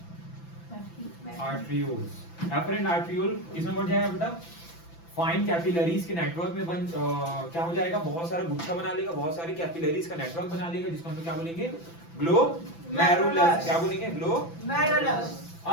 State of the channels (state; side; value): late; right; 5.9 ms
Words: arterioles. Efferent arteriole किसमें बढ़ जाएगा बेटा? फाइन कैपिलरीज के नेटवर्क में क्या हो जाएगा, बहुत सारा गुच्छा बना लेगा, बहुत सारी कैपिलरीज का नेटवर्क बना लेगा, जिसको हम लोग क्या बोलेंगे, ग्लोमेरुलस। क्या बोलेंगे? ग्लोमेरुलस।